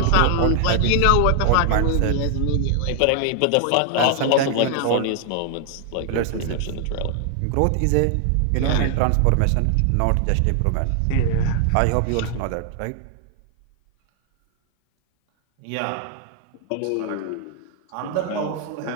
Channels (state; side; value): different; both; correlation 0.00